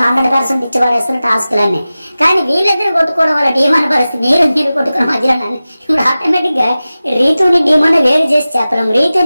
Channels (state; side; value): inverted; both; correlation -0.96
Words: 100% ఇచ్చి పడేస్తున్న టాస్క్లన్నీ. కానీ వీళ్ళిద్దరు కొట్టుకోవడం వల్ల డీమోన్ పరిస్థితి మీరు కొట్టుకున్న మధ్యలో ఇప్పుడు ఆటోమేటిక్ గా రీతుని డీమోన్ వేరు చేసి చెప్పలేం.